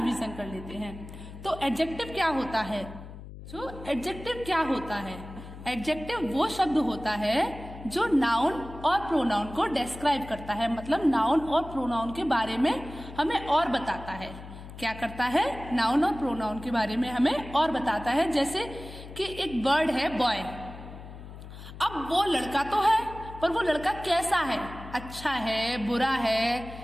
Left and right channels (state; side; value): noise; left; hum, 14 dB below the sound